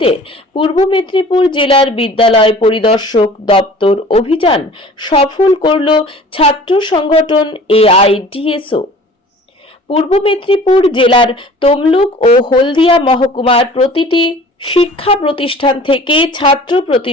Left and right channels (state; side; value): normal; both; correlation 0.46